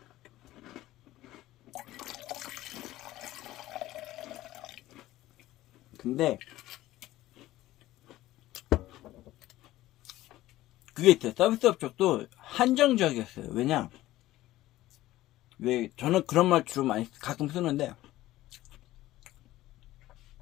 근데 그게 있어요. 서비스업 쪽도 한정적이었어요. 왜 저는 그런 말 주로 많이 가끔 쓰는데,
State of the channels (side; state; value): right; quieter; 15.9 dB